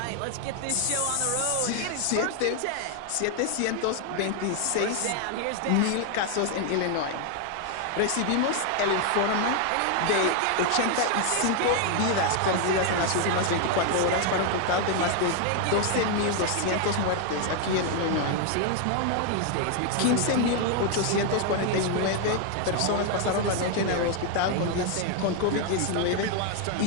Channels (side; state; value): both; different; correlation 0.00